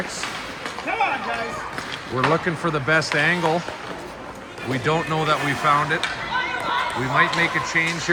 Come on, guys. We're looking for the best angle. We don't know that we found it. We might make a change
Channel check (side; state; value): both; identical; correlation 1.00